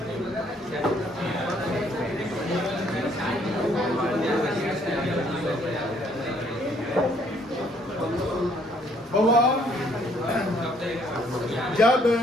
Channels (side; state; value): both; normal; correlation 0.65